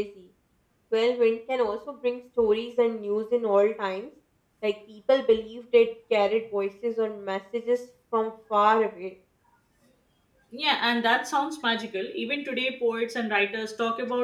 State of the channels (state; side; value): identical; both; correlation 1.00